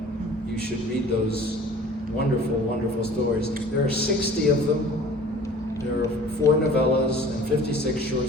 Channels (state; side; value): normal; both; correlation 0.46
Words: You should read those wonderful, wonderful stories. There are 60 of them. There are 4 novellas and 56 short